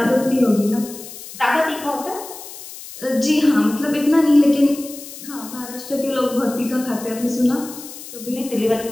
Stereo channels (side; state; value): left; noise; hiss, 14 dB below the sound